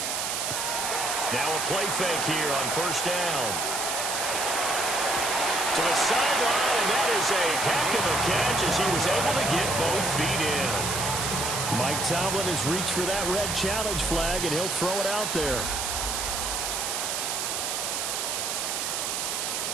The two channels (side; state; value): right; noise; hiss, 1 dB below the sound